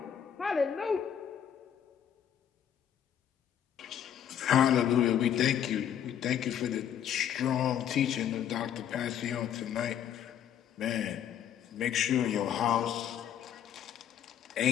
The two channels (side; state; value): right; quieter; 9.5 dB